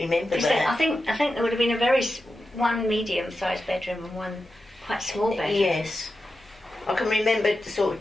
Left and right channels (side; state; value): both; normal; correlation 0.91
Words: Is it- that. I think there would have been one medium-sized bedroom and one quite small bedroom. Yes. I can remember sort